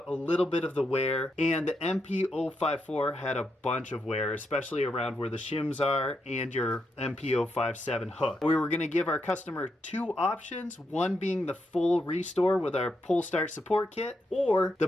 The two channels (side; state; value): both; normal; correlation 0.82